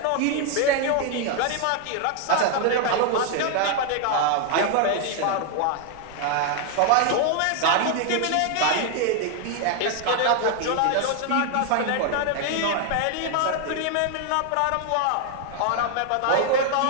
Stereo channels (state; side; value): different; both; correlation 0.00